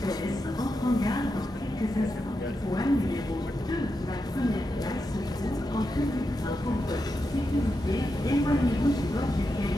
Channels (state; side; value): normal; both; correlation 0.87